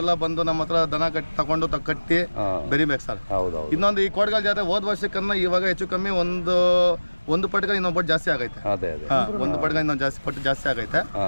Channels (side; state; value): both; inverted; correlation -1.00